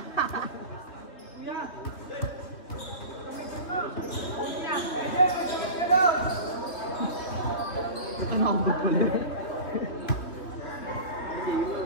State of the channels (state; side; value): late; right; 2.9 ms